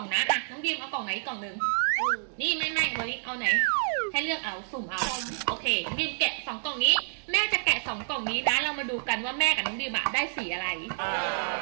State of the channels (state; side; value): silent; left; digital silence